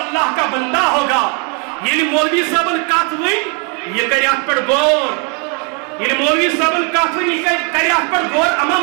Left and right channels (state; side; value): quieter; left; 35.9 dB